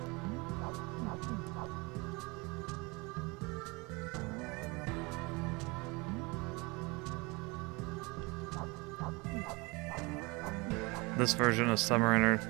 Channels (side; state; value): left; quieter; 26.5 dB